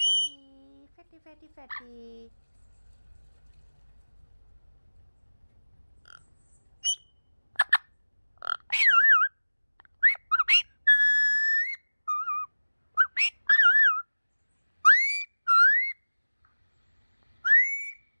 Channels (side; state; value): both; inverted; correlation -1.00